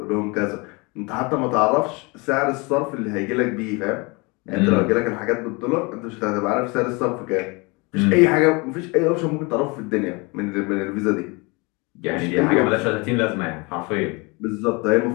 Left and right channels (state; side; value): quieter; right; 27.9 dB